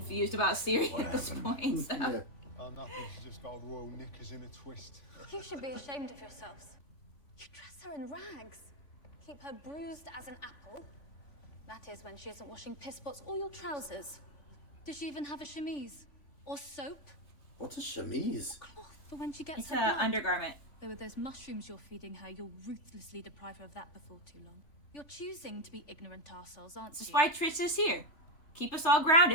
about Ciri at this point. So. Yeah. Oh, nothing. She's just got royal knickers in a twist. You should be ashamed of yourselves. You dress her in rags. Keep her bruised as an apple. That is when she isn't washing piss spots or your trousers. Does she even have a chemise? Or soap? What's a chemise? Cloth for when she gets It's her an blood. undergarment. Though with those mushrooms you're feeding her, you'll ruthlessly deprive her of that before too long. You're choosing to be ignorant arseholes, aren't you? That's why Triss is here. Keep us all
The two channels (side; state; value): right; late; 3.3 ms